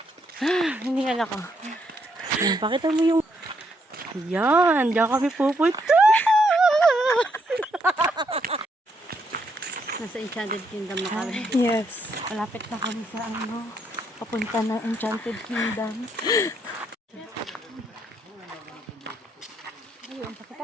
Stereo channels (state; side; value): normal; both; correlation 0.75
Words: Hiningal ako. Ayan, pakita mo yung ayan, diyan kami pupunta. Nasa Enchanted Kingdom na kami. Yes. Malapit na kami sa papunta ng Enchanted Kingdom. Ayun, pakita.